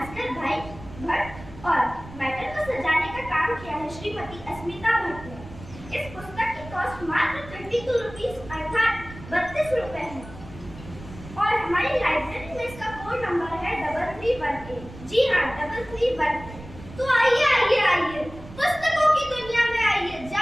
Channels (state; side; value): noise; right; rumble, 16 dB below the sound